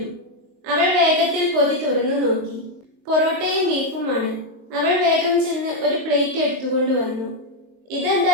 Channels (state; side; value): late; left; 23 ms